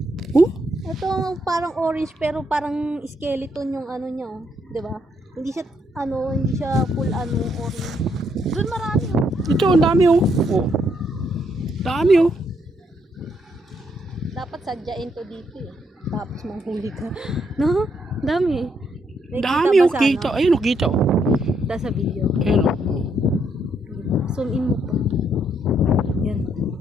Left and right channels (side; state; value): both; normal; correlation 0.74